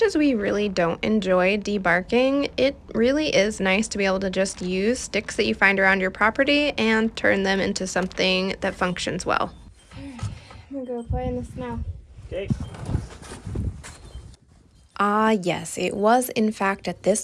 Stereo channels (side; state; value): both; identical; correlation 1.00